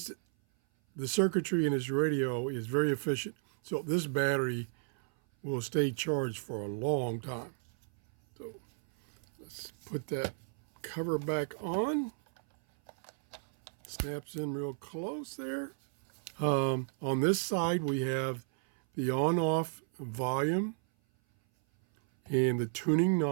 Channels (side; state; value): left; silent; 56 dB below the other